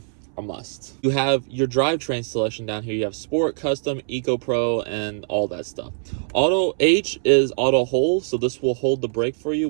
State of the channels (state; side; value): silent; left; 64 dB below the other